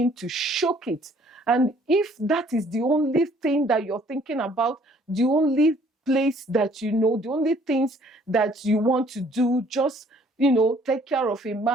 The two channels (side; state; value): both; normal; correlation 0.60